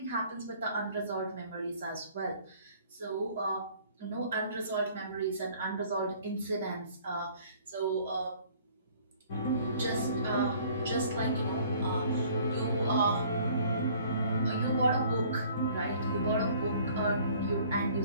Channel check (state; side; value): inverted; both; correlation -0.55